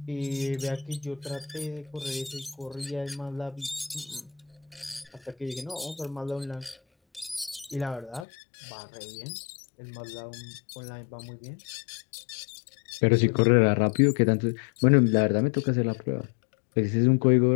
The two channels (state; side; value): drops out; right; at 8.2 s